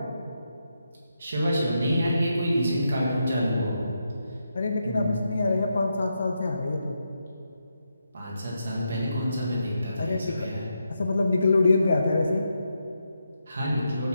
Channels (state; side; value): inverted; both; correlation -0.84